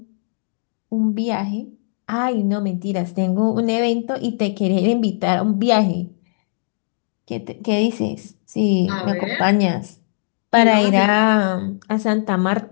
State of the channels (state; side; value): silent; right; digital silence